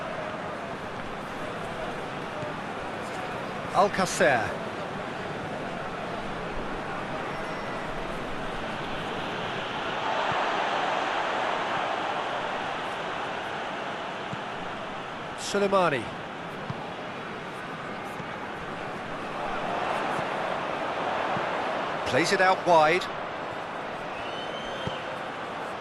Alcacer. Suleimani. Plays it out wide.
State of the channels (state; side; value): identical; both; correlation 1.00